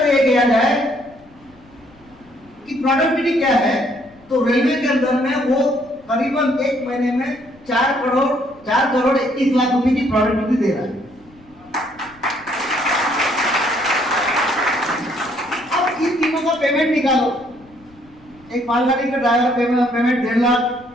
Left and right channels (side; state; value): left; noise; rumble, 28 dB below the sound